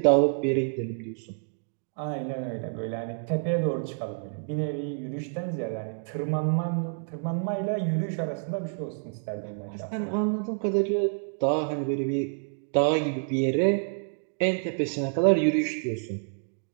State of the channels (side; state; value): left; silent; digital silence